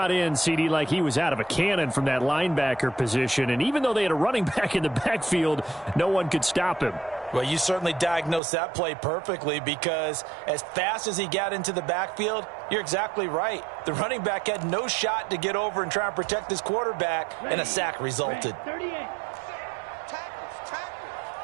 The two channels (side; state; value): left; drops out; at 8.4 s